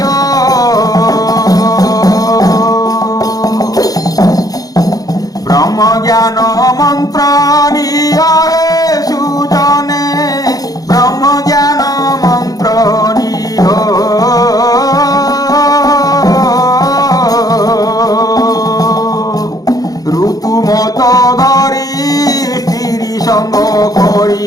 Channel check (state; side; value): late; right; 0.18 ms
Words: ব্রহ্ম জ্ঞান মন্ত্র নিয় সুজনে ব্রহ্ম জ্ঞান মন্ত্র নিয় ঋতুমত ধরি স্ত্রী সঙ্গ